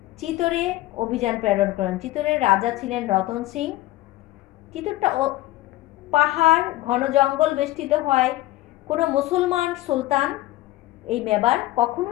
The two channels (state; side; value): quieter; right; 16.9 dB